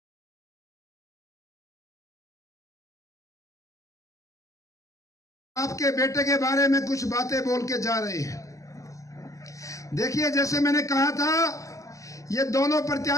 आपके बेटे के बारे में कुछ बातें बोल के जा रहे हैं। देखिए, जैसे मैंने कहा था, ये दोनों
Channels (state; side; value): late; right; 0.16 ms